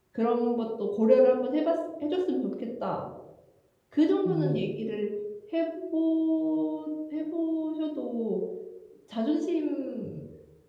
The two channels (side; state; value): both; identical; correlation 1.00